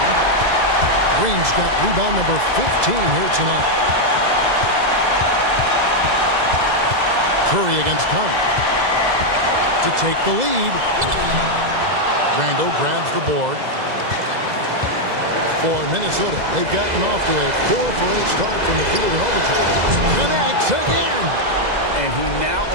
Green's got rebound number 15 here tonight. Curry against Conley to take the lead. Randall grabs the board. For Minnesota, they've gotten off to a 4-for-8 start from the field in overtime. Connects again. And he now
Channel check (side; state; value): left; late; 2.0 ms